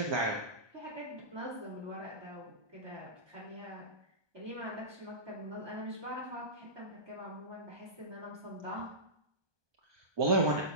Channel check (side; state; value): left; late; 1.2 ms